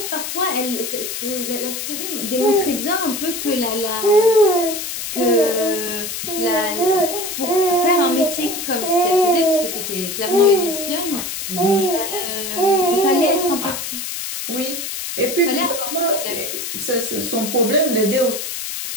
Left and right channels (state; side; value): noise; left; hiss, 5 dB below the sound